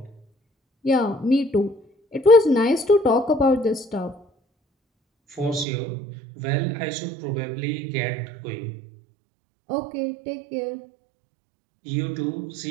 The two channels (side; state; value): left; drops out; at 5.7 s